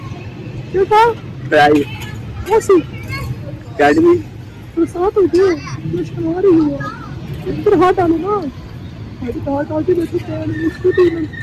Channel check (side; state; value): both; identical; correlation 1.00